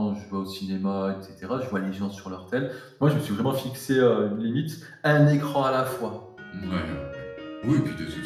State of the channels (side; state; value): both; identical; correlation 1.00